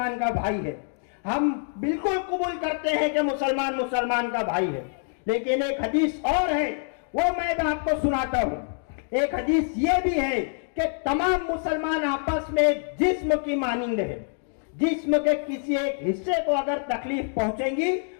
का भाई है, हम बिल्कुल कबूल करते हैं कि मुसलमान मुसलमान का भाई है। लेकिन एक हदीस और है, वो मैं आपको सुनाता हूं। एक हदीस ये भी है कि तमाम मुसलमान आपस में एक जिस्म की मानिंद है। जिस्म के किसी एक हिस्से को अगर तकलीफ पहुंचेगी,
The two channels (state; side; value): silent; right; digital silence